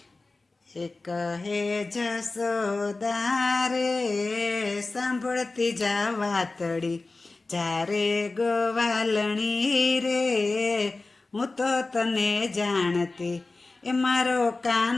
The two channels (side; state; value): right; quieter; 3.4 dB